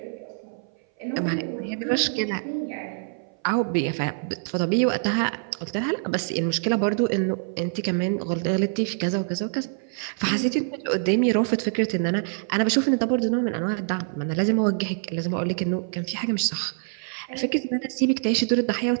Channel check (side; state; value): left; silent; 58 dB below the other